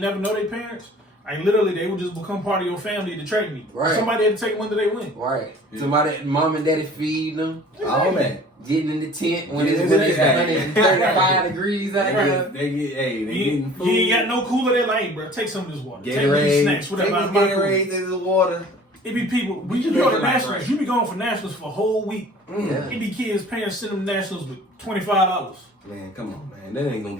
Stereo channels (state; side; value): normal; both; correlation 0.47